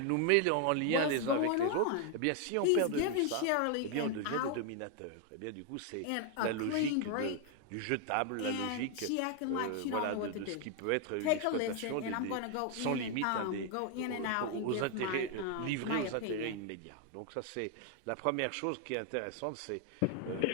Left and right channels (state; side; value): different; both; correlation 0.00